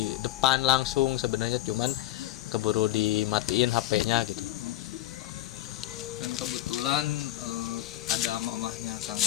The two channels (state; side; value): quieter; right; 15.1 dB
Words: depan langsung sebenarnya, cuman keburu dimatiin HP-nya gitu. Dan kebetulan ada mamahnya Kang